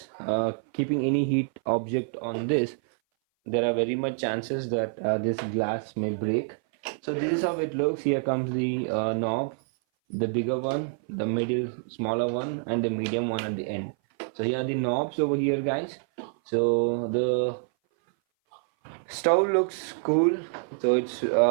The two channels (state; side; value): silent; left; 58 dB below the other